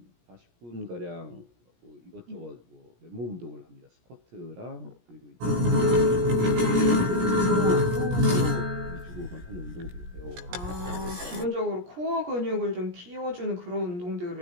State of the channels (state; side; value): late; left; 17 ms